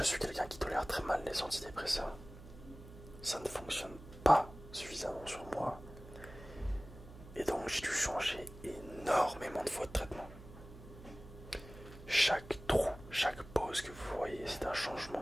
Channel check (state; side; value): noise; right; hum, 16 dB below the sound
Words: suis quelqu'un qui tolère très mal les antidépresseurs. Ça ne fonctionne pas suffisamment sur moi. Et donc j'ai dû changer énormément de fois de traitement. Chaque trou, chaque pause que vous voyez, c'est un changement